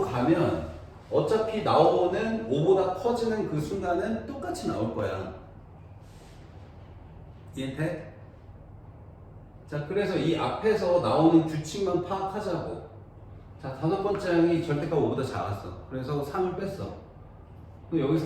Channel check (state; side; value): identical; both; correlation 1.00